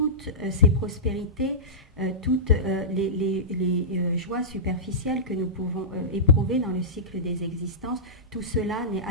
ces prospérités, toutes les joies superficielles que nous pouvons éprouver dans le cycle des existences, tout cela n'est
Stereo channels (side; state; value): both; normal; correlation -0.17